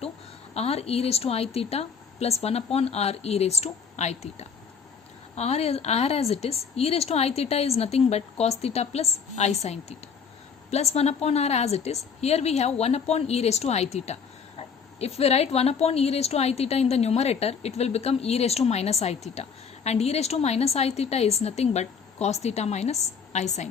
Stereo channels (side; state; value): right; quieter; 6.2 dB